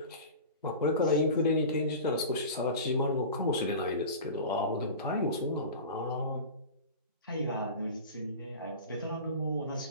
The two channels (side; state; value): both; inverted; correlation -0.33